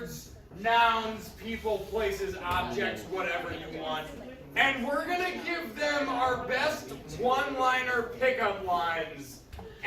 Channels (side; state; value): both; identical; correlation 1.00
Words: nouns, people, places, objects, whatever you want. And we're going to give them our best one-liner pickup lines